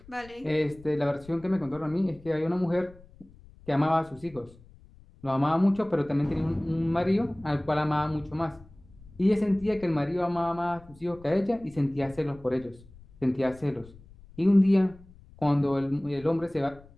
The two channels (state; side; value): noise; left; rumble, 23 dB below the sound